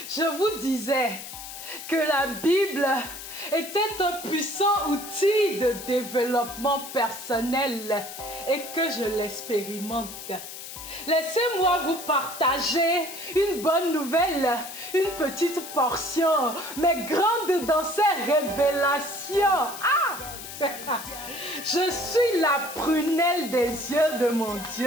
Je vous disais que la Bible était un puissant outil de développement personnel et que je l'expérimente. Laissez-moi vous partager une bonne nouvelle, une petite portion, mais grande dans ses révélations. Ah! Je suis la prunelle des yeux de mon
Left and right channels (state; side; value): noise; left; hiss, 11 dB below the sound